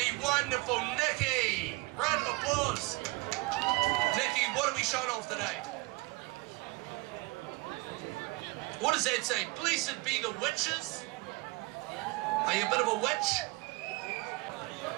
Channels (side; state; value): left; quieter; 23.7 dB